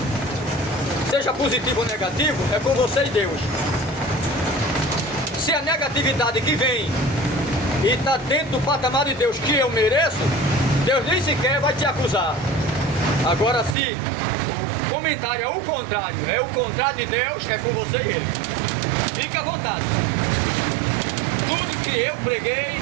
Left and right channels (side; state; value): left; drops out; at 13.8 s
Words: Seja positivo ou negativo, é com você e Deus. Se a negatividade que vem e está dentro do patamar de Deus que eu mereço, Deus nem sequer vai te acusar. Agora, se o comentário é o contrário de Deus, é com você e ele. Fique à vontade. Tudo que eu preguei